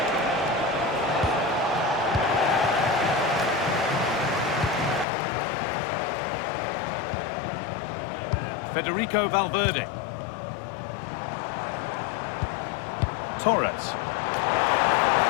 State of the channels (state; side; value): drops out; right; at 5.1 s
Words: Federico Valverde. Torres.